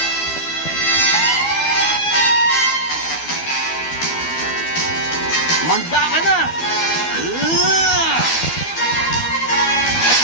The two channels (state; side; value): late; right; 12 ms